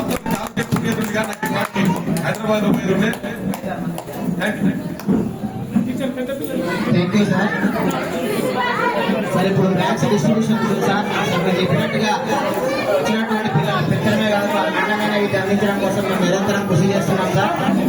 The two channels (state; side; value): identical; both; correlation 1.00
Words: హైదరాబాద్ లో పోయి ఉండే. Thank you sir. సార్ ఇప్పుడు బ్యాగ్స్ డిస్ట్రిబ్యూషన్ సార్ మీరు చెప్పినట్టుగా వచ్చినటువంటి పిల్లలు పెద్దలమే కాదు వాళ్ళ నాణ్యమైన విద్య అందించడం కోసం మేము నిరంతరం కృషి చేస్తున్నాం సార్.